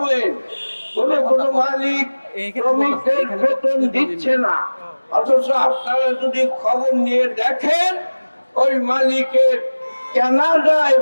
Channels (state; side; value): inverted; both; correlation -1.00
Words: কোনো মালিক শ্রমিকদের বেতন দিচ্ছে না, অথচ আপনারা যদি খবর নিয়ে দেখেন ওই মালিকের কানাডায়